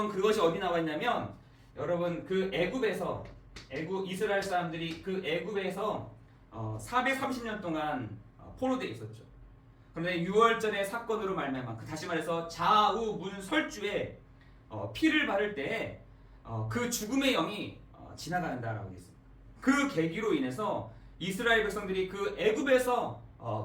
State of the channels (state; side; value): identical; both; correlation 1.00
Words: 그것이 어디 나와 있냐면, 여러분 그 이스라엘 사람들이 그 애굽에서 430년 동안 포로되어 있었죠. 그런데 6월절의 사건으로 말미암아, 다시 말해서 좌우문설주에 피를 바를 때 그 죽음의 영이 지나간다라고 되어 있습니다. 그 계기로 인해서 이스라엘 백성들이 그 애굽에서